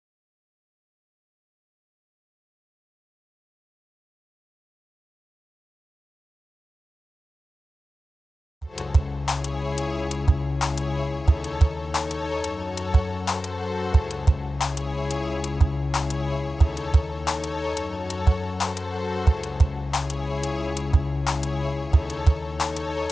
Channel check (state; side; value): normal; both; correlation 0.94